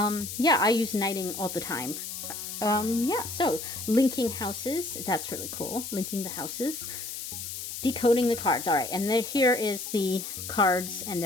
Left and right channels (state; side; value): noise; left; hiss, 7 dB below the sound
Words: I use knighting all the time. Yeah, so linking houses, that's really cool. Linking the houses. Decoding the cards. All right, and then here is the cards and